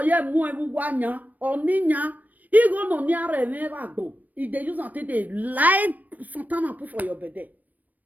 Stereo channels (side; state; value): left; late; 0.082 ms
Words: ye mo ewu wanya oninya. Igo no niare never go. If they use until they lie Santana put for your belly.